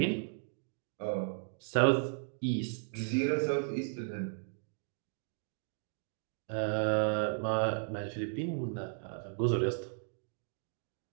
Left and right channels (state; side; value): silent; left; digital silence